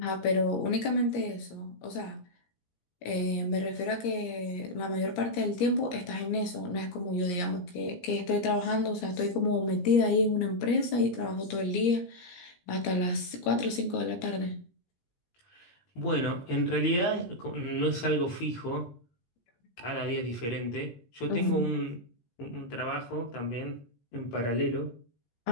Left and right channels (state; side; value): late; right; 17 ms